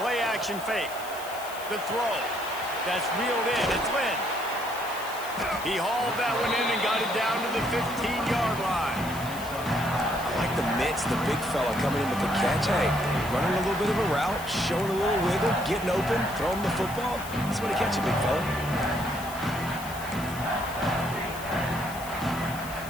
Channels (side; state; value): left; noise; hiss, 14 dB below the sound